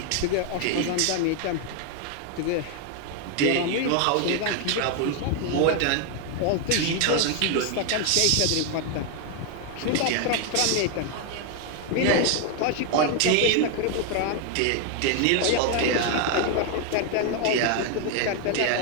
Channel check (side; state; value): both; different; correlation 0.00